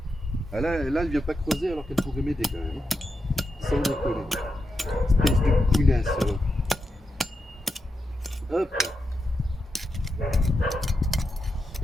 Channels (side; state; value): both; normal; correlation 0.87